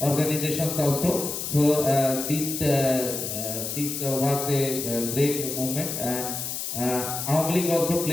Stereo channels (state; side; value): noise; left; hiss, 4 dB below the sound